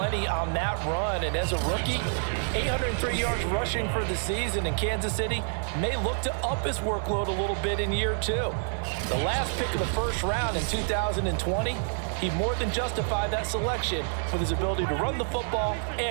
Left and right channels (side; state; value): left; silent; digital silence